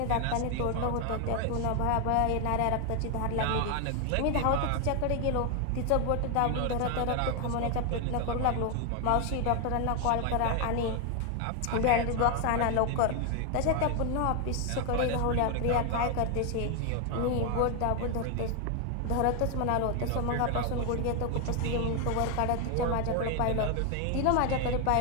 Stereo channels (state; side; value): different; both; correlation 0.01